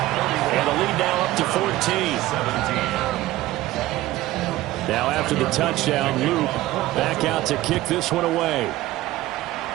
the lead now up to 14. Now after the touchdown, Luke back out to kick this one away.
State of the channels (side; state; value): left; quieter; 16.5 dB